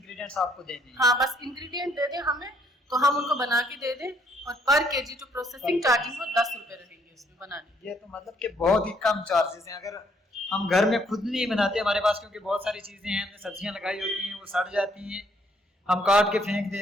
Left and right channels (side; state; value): both; normal; correlation 0.68